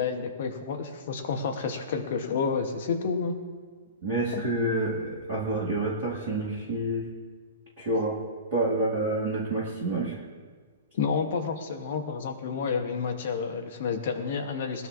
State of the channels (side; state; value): both; inverted; correlation -0.32